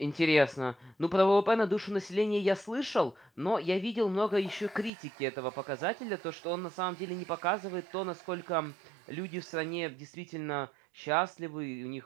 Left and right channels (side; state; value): left; drops out; at 4.9 s